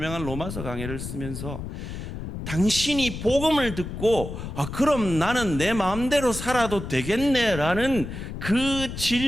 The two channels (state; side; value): noise; left; rumble, 8 dB below the sound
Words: 로마서 강해를 쓰면서 당신이 복음을 듣고 그럼 나는 내 마음대로 살아도 되겠네 라는 그